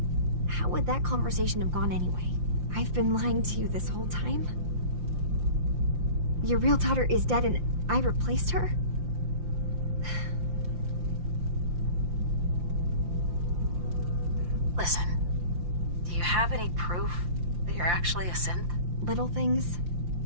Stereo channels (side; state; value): left; late; 5.8 ms